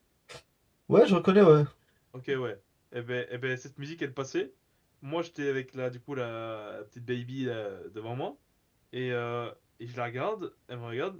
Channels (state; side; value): identical; both; correlation 1.00